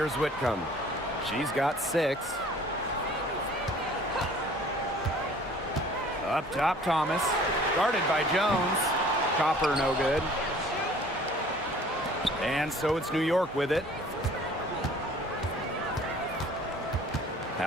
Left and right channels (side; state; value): both; normal; correlation 0.51